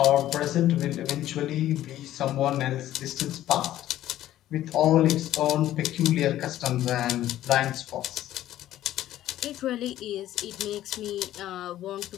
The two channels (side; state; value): right; quieter; 13.4 dB